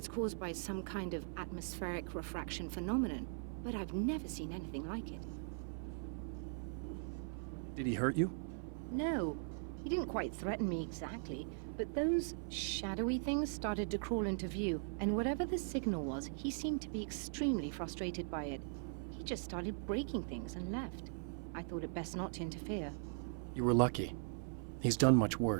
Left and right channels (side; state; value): left; silent; 51 dB below the other